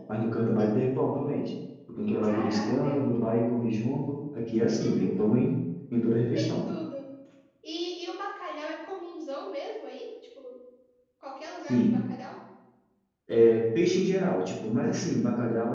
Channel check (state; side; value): identical; both; correlation 1.00